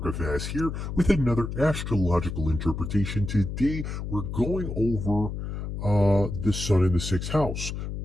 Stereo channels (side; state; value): left; noise; hum, 5 dB below the sound